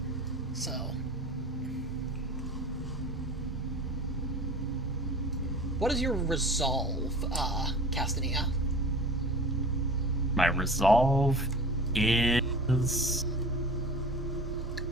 So... what is your resolve, Castanea? My resolve is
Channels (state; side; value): normal; both; correlation 0.39